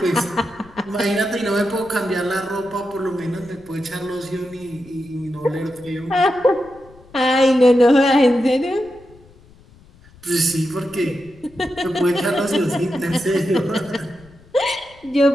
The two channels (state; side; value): noise; left; rumble, 26 dB below the sound